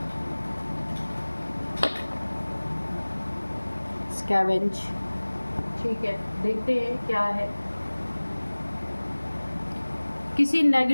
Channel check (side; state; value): both; inverted; correlation -1.00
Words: scavenge। ठीक है, देखते हैं क्या है। किसी